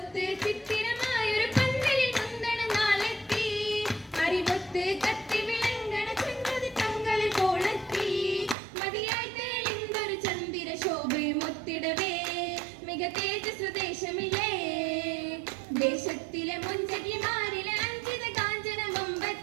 ചിത്തിരമായൊരു പന്തലിൽ മുന്തണ നാളെത്തി അറിവൊത്ത് കത്തി വിളങ്ങണ ചന്ദ്രതി തങ്ങളിൽ കോളെത്തി മതിയായി തെളിന്തൊരു ചന്ദ്ര ശോഭയും ഒത്തിടവേ മിക തേജസ് ദേശമില്ലേ ദേശത്തിലെ മുഞ്ചകിമാരിലെ അഞ്ചിത കാഞ്ചന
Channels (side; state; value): left; drops out; at 8.6 s